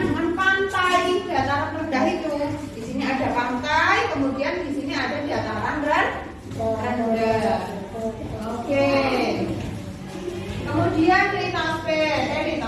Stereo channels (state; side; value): identical; both; correlation 1.00